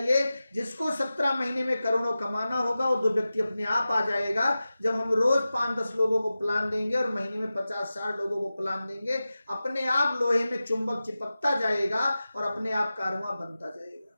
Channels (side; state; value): both; inverted; correlation -0.95